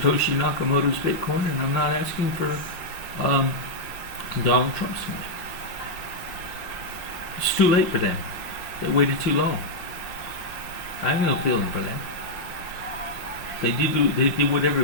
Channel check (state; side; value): late; right; 5.7 ms